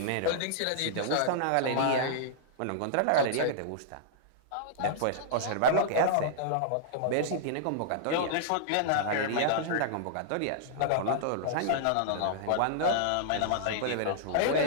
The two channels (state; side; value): different; both; correlation -0.02